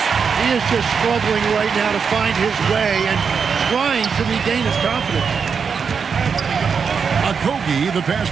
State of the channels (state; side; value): quieter; left; 6.1 dB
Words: He is just struggling right now to find his way and trying to regain his confidence. Okogie, the pass